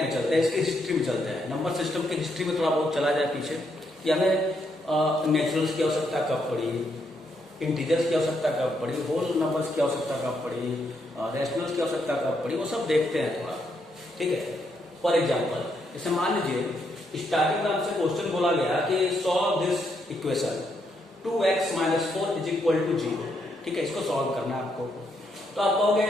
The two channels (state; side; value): normal; both; correlation 0.77